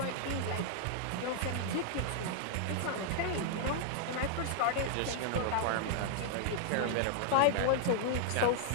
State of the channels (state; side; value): different; both; correlation 0.00